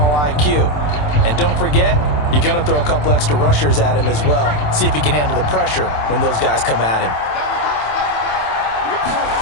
IQ. And don't forget, you're going to throw a couple extra rushers at him as well. See if he can handle the pressure when those guys come at him.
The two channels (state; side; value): late; right; 27 ms